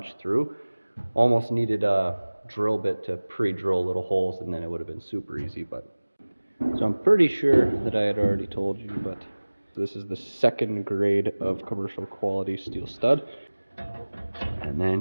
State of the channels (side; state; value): both; inverted; correlation -1.00